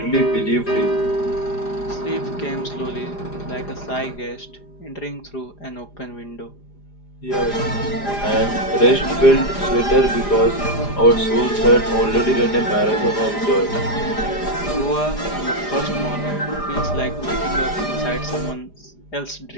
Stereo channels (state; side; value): late; right; 4.9 ms